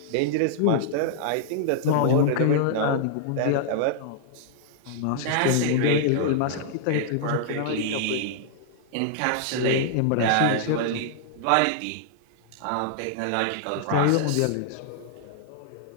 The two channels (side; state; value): both; different; correlation -0.01